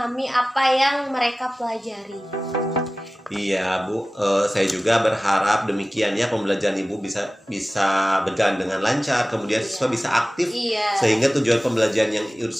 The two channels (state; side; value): normal; both; correlation 0.97